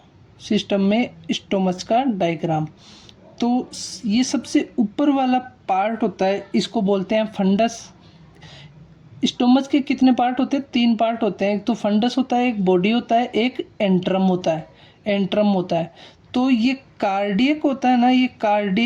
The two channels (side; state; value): both; identical; correlation 1.00